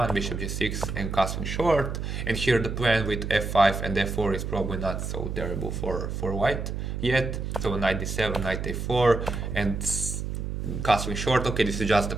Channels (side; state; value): right; noise; hum, 4 dB below the sound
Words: bishop g6 and castling short. And here the plan with f5 and f4 is probably not so terrible for white yet. So knight d7, knight a4 and castling short. Okay, this is just